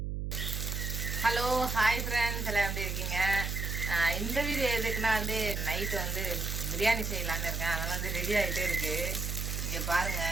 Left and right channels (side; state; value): right; noise; hum, 3 dB below the sound